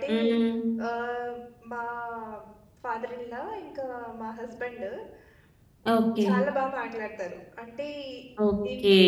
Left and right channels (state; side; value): identical; both; correlation 1.00